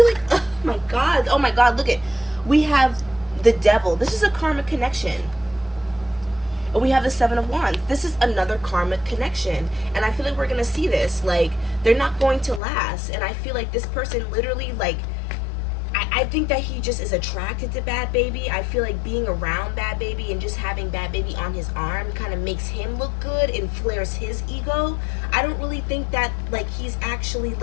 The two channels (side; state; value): right; drops out; at 12.6 s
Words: like, oh my God, look at, we have the Devil. This is a karmic connection. And we have the Seven of Wands. This is another karmic connection. And I feel like we're going to see this. Like, they're not going to last. And I feel like this person literally, like, I think that he just is attracted to Bhad Bhabie. I feel like being around Bhad Bhabie and just having Bhad Bhabie on his arm kind of makes him look good and flares his ego. I don't really think that, like, he's actually,